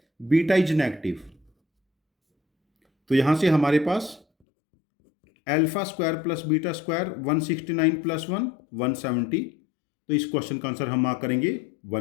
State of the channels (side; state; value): right; drops out; at 4.2 s